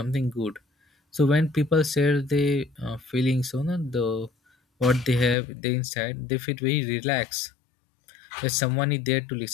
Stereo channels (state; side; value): drops out; right; at 5.4 s